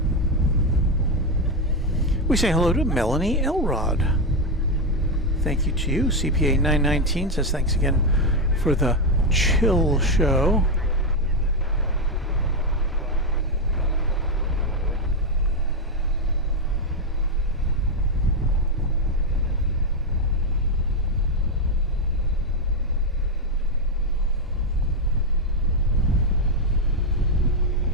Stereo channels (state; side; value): normal; both; correlation 0.06